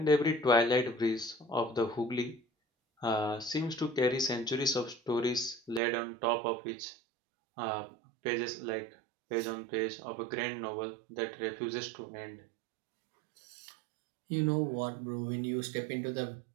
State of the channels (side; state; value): left; drops out; at 5.8 s